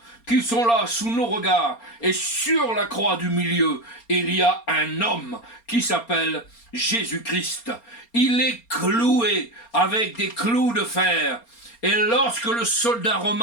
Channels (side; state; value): right; late; 4.3 ms